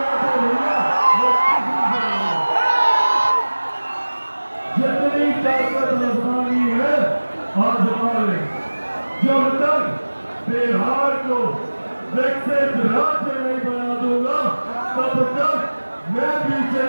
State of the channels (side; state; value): both; inverted; correlation -1.00